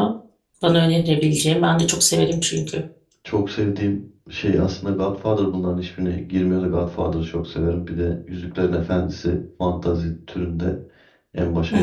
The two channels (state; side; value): identical; both; correlation 1.00